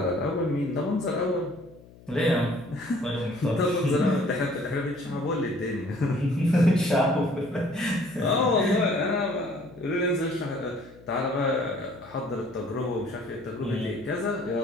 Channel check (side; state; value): left; noise; hum, 23 dB below the sound